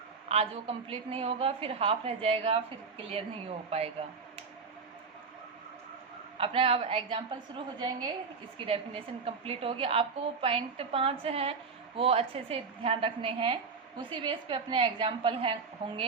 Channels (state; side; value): quieter; left; 5.1 dB